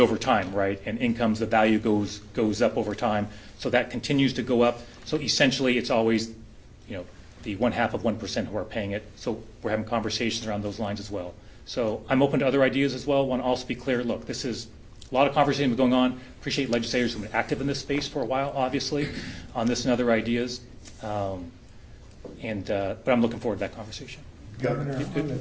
time, right? And incomes, the value goes up over time. So that continues to go up. So essentially, it's always, the 0.5% who are paying it. So we're having conversations around those lines as well. So I'm open to other ideas as well. Want to also be clear, look, this is a lot of conversation going on. Appreciate legislators who've been active in this space for a while, obviously, on this and other ideas. But I'm looking forward to that conversation. Governor,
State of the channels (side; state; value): both; identical; correlation 1.00